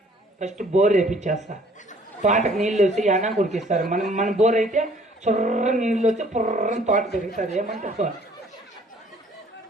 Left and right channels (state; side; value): normal; both; correlation 0.57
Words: First bore వేపించేస్తా. తోటకు నీళ్ళు వచ్చి అనా కురికిస్తారు. మన బోర్ అయితే చొర్ర నీళ్ళు వచ్చి పుర్రని తోట పెరుగుతుంది. ఏమంటారు?